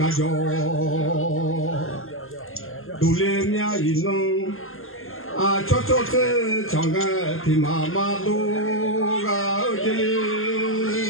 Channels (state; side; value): late; right; 0.61 ms